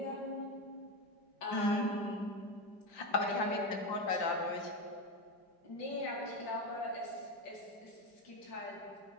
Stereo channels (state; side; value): late; right; 5.1 ms